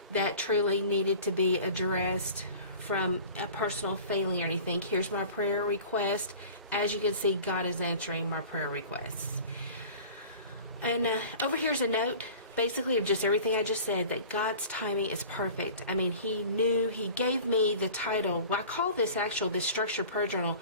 that truly needed to be addressed from a personal failing or anything. Here's my prayer request. As you can see, God is answering my prayer requests. And over here's a note, basically of just everything I just said, that God's timing is perfect. I mean, He knew, He gave me the title. Well, I call this structured prayer journal,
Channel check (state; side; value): inverted; both; correlation -0.42